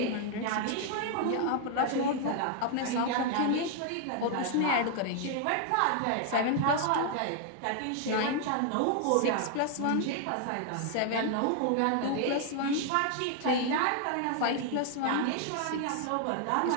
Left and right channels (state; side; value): different; both; correlation 0.00